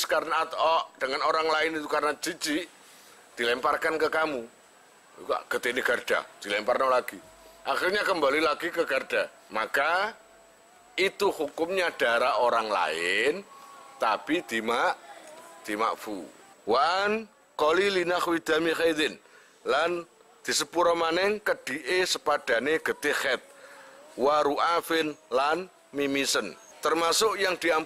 karena atau dengan orang lain itu karena jijik, dilemparkan ke kamu. Juga getih garda, dilemparkan lagi. Akhirnya kembali lagi ke garda. Maka itu hukumnya darah orang lain, tapi dimakfu. Wan qalili nahwi dami khaidin lan disepuro maneng kedhike sepadane getih khaid. Wa ru'afin lan mimisen. Termasuk yang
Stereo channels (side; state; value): both; identical; correlation 1.00